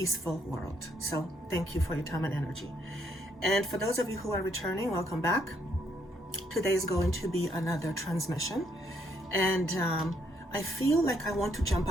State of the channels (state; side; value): normal; both; correlation 0.71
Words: world. So thank you for your time and energy. And for those of you who are returning, welcome back. Today is going to be another transmission. And I feel like I want to jump